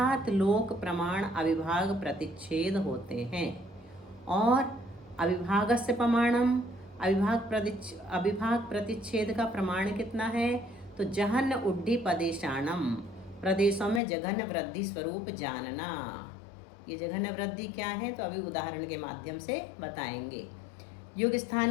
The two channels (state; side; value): drops out; right; at 14.0 s